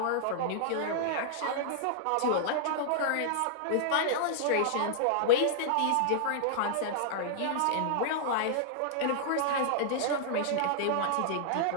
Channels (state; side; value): different; both; correlation -0.01